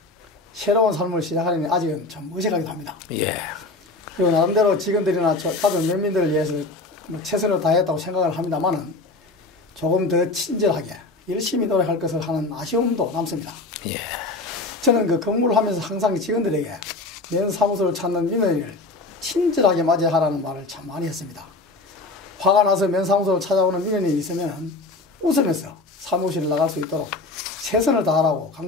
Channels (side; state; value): right; quieter; 3.3 dB